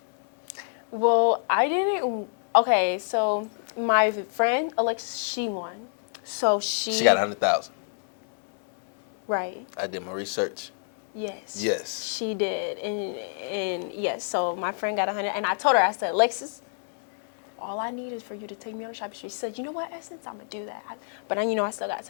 Well, I didn't. Okay, so my friend Alexa, she won. So She got 100,000. Right. I did my research. Yes. Yes. She did, and yes. So my friend got 100, and I told her, I said, Alexis, all I need is for you to take me on a shopping spree. She said, you know what, Essence, I'm gonna do that. But I still got to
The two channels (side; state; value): right; silent; digital silence